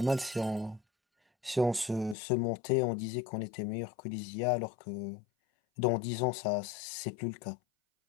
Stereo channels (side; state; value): right; drops out; at 2.1 s